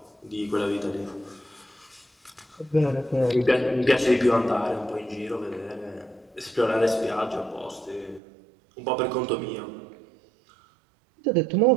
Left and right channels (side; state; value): left; drops out; at 8.2 s